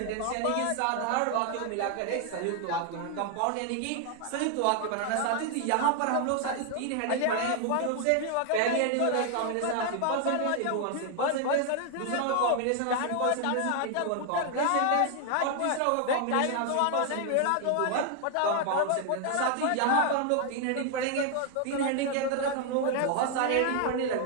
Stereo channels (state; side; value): different; both; correlation 0.00